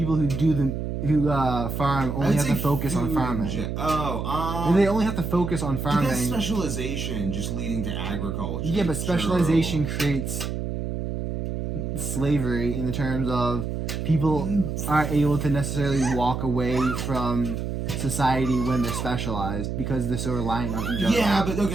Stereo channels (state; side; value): noise; right; hum, 3 dB below the sound